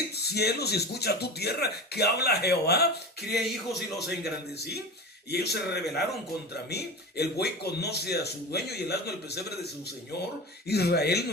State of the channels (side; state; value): both; normal; correlation 0.29